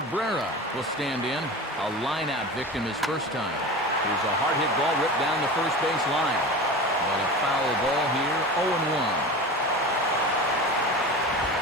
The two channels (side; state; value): both; normal; correlation 0.31